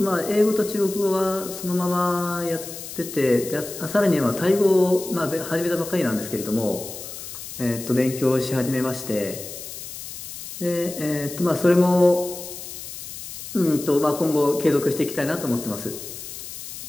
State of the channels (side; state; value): left; noise; hiss, 11 dB below the sound